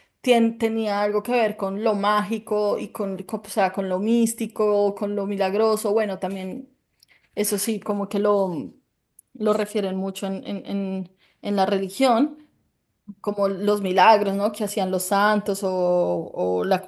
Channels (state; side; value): identical; both; correlation 1.00